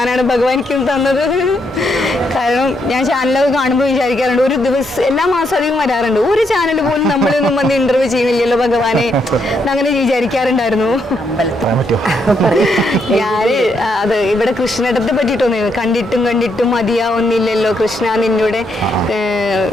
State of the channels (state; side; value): normal; both; correlation 0.77